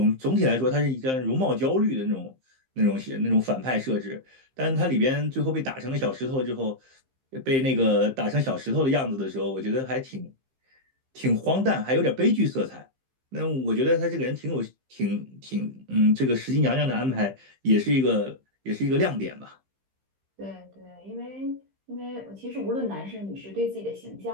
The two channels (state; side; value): late; left; 15 ms